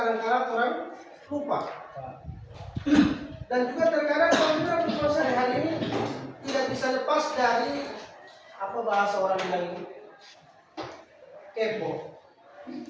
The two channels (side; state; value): both; identical; correlation 1.00